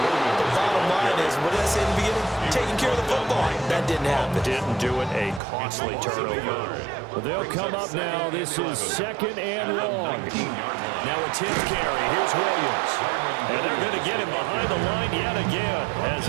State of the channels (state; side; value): drops out; left; at 5.4 s